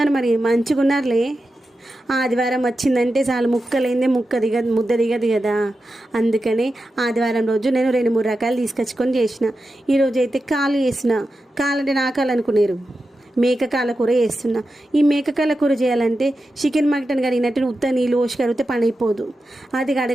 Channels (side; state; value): both; normal; correlation 0.91